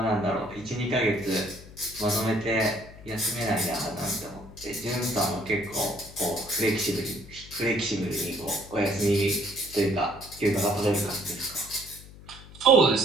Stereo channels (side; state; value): left; noise; hum, 18 dB below the sound